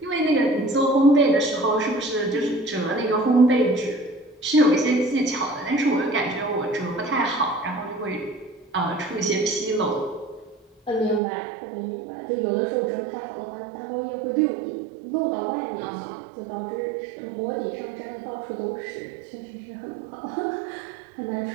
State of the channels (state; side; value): drops out; left; at 11.2 s